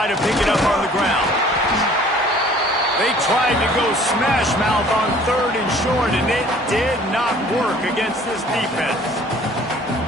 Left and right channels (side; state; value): both; normal; correlation 0.53